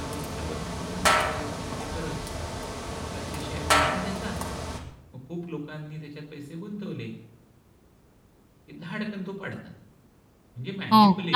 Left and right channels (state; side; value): identical; both; correlation 1.00